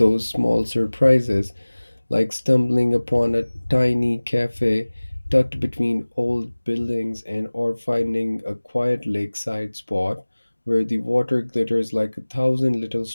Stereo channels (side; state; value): both; inverted; correlation -1.00